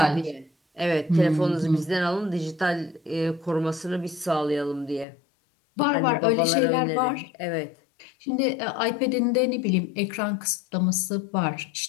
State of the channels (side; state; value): right; drops out; at 5.1 s